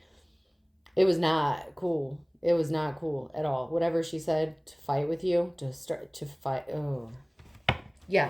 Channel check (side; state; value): both; identical; correlation 1.00